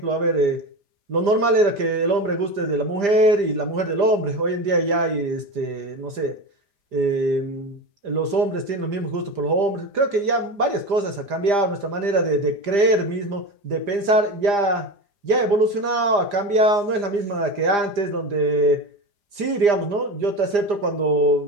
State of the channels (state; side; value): late; left; 4.9 ms